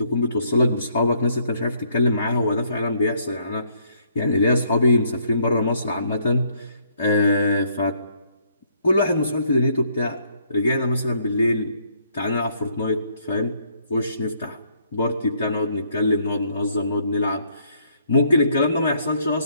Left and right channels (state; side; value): inverted; both; correlation -0.68